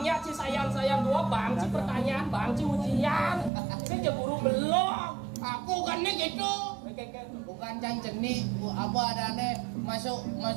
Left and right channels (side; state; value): left; drops out; at 3.5 s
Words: si sayang-sayang 2, bang si pertanyaan, bang si ujian. Saya je guru belum. Aku kan nih gitu. Bukan cang jenik, apa adanya masuk